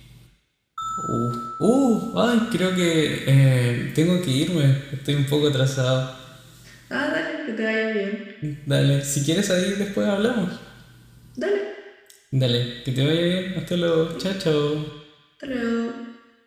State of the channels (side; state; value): both; identical; correlation 1.00